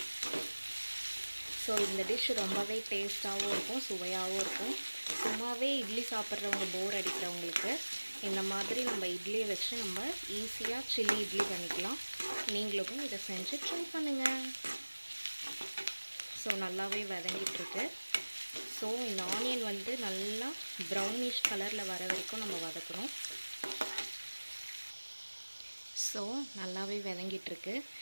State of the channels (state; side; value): inverted; both; correlation -1.00